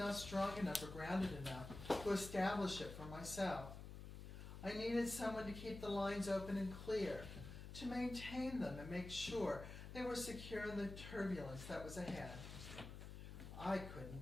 strong enough or grounded enough to establish it for myself. I needed someone to keep the lines open and clear, to maintain them and make sure they were secure in the turbulence that was ahead. I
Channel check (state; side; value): noise; left; hum, 10 dB below the sound